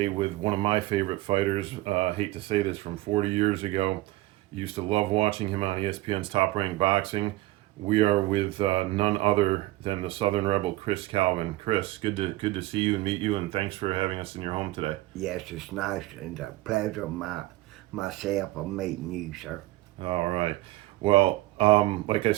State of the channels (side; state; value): left; quieter; 18.2 dB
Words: with one of my favorite fighters. Hate to say this, from 40 years ago. Used to love watching him on ESPN's Top Rank Boxing. We are with none other than the Southern Rebel, Chris Calvin. Chris, good to see you and meet you, and thanks for having us in your home today. Yes, it's nice and a pleasure myself of meeting you, sir. All right. Well, like I